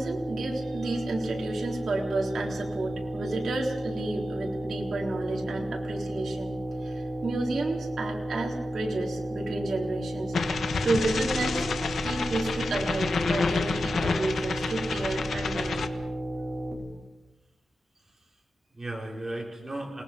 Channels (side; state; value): both; normal; correlation 0.90